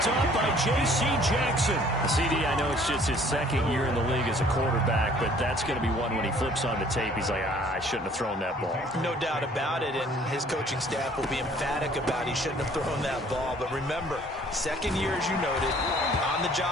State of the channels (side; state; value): both; normal; correlation 0.56